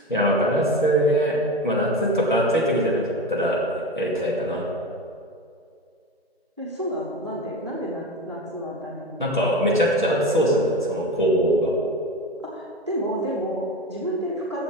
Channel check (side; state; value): both; normal; correlation 0.27